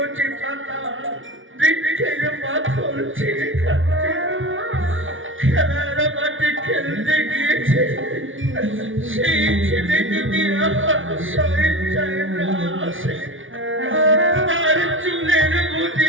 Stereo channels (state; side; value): late; left; 0.57 ms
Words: পাতা বৃক্ষের পাথর ছিঁড়ে খাচ্ছে, খেলার মাঠে খেলতে গিয়েছে। সেই ছেলে যদি আমার স্বেচ্ছায় না আসে, তার চুলের